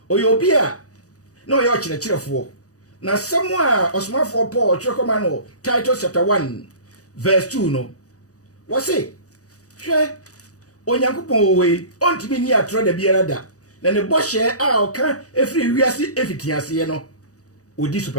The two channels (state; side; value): late; right; 0.66 ms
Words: oyo obi a no ye o kyerɛkyerɛfo na samu a osmafo Paul twere koma no Titus chapter 1 verse 2 no wo se hwɛ Onyankopɔn we ontimi ni atro da biara da na ne bɔhye a oka efiri wiase efitiase no odi so